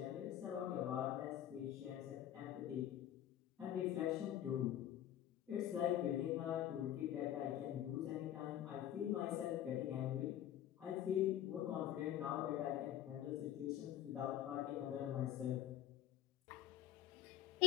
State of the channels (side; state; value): right; quieter; 11.5 dB